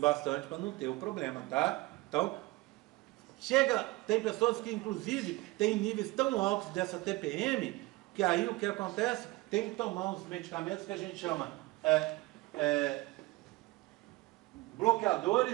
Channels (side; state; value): left; quieter; 20.7 dB